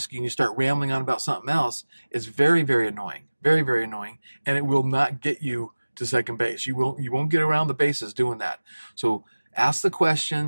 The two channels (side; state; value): both; inverted; correlation -1.00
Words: you, and you start rambling on about something else, it's very, very annoying. Very, very annoying. And it will not get you to second base. You won't get around the bases doing that. So ask the